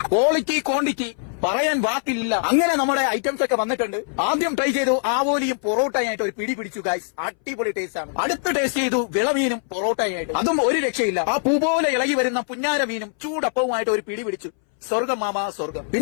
ക്വാളിറ്റി ക്വാണ്ടിറ്റി പറയാൻ വാക്കില്ല. അങ്ങനെ നമ്മുടെ ഐറ്റംസ് ഒക്കെ വന്നിട്ടുണ്ട്. ആദ്യം ട്രൈ ചെയ്തു ആവോലിയും പൊറോട്ടയായിട്ട് ഒരു പിടി പിടിച്ചു ഗൈസ്. അടിപൊളി ടേസ്റ്റ് ആണ്. അടുത്ത് ടേസ്റ്റ് ചെയ്തു വിളമീനും പൊറോട്ടയായിട്ട്, അതും ഒരു രക്ഷയില്ല. ആ പൂ പോലെ ഇളകി വരുന്ന പുന്നാര മീനും ചൂടപ്പവുമായിട്ട് ഒരു പിടി പിടിച്ചു. സ്വർഗം മാമ സ്വർഗം.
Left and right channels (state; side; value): silent; right; 62 dB below the other